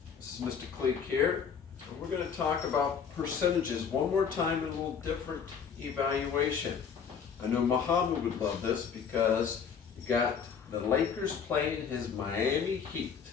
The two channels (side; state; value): right; quieter; 6.8 dB